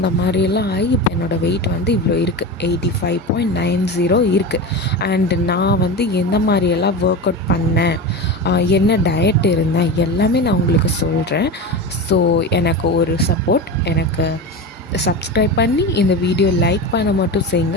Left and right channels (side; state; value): both; normal; correlation 0.25